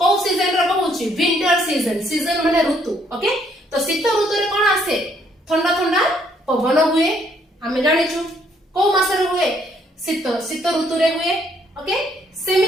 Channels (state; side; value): normal; both; correlation 0.68